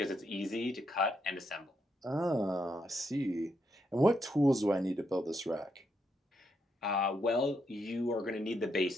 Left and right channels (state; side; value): normal; both; correlation 0.79